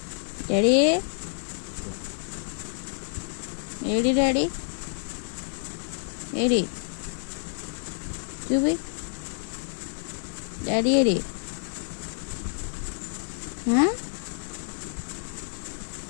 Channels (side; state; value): right; silent; 59 dB below the other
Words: daddy AD daddy AD చూపి డాడీ ఏడి